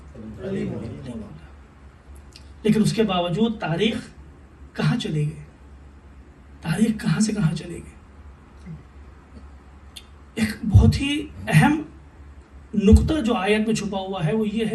علی مولا۔ لیکن اس کے باوجود تاریخ کہاں چلی گئی؟ تاریخ کہاں سے کہاں چلی گئی؟ ایک بہت ہی اہم نقطہ جو آیت میں چھپا ہوا ہے وہ یہ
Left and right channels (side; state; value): both; identical; correlation 1.00